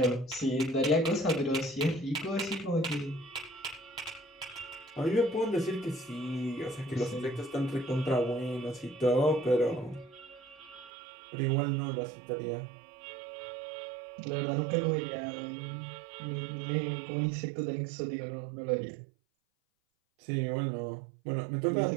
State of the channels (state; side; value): drops out; left; at 10.9 s